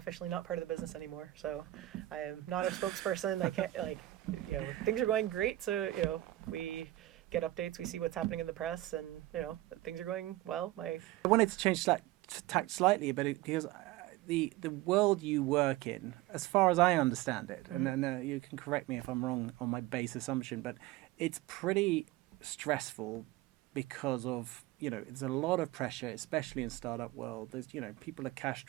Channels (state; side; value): quieter; left; 16.6 dB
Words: not part of the business anymore. So I am not a spokesperson. I can't, like, things are going great. So, we get updates, we see what's happening in the press, and, things are going well. I wanted to change tact slightly, but because the world you work in, as far as I understand it, and then you can correct me if I'm wrong on my base assumption, but it's pretty stressful because of, it's a lot of pressure, especially in startup world. There's, people are cash